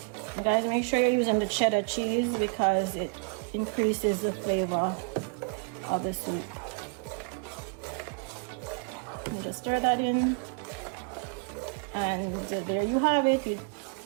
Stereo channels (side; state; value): left; quieter; 35.9 dB